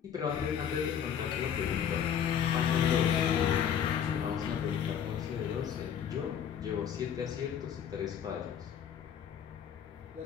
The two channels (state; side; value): quieter; right; 8.6 dB